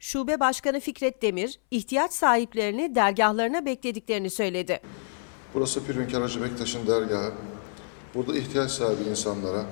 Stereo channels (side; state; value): right; silent; 59 dB below the other